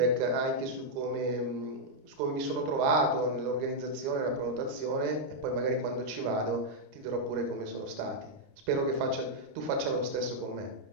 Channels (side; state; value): left; late; 30 ms